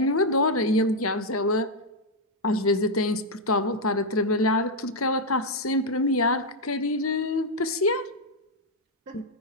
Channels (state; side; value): normal; both; correlation -0.01